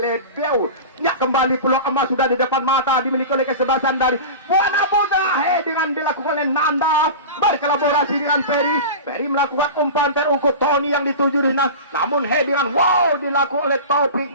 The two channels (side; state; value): both; inverted; correlation -0.30